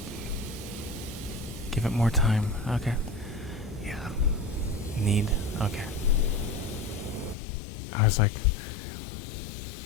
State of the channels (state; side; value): drops out; right; at 7.4 s